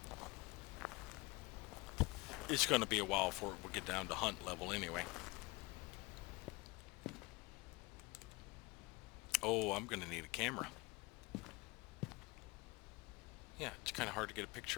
It's going to be a while before we get down to hunt level anyway. Oh, I'm going to need a camera. Yeah, it's kind of hard to get a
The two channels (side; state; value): right; quieter; 24.3 dB